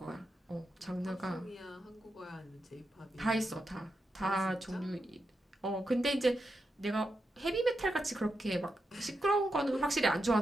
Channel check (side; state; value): both; normal; correlation 0.87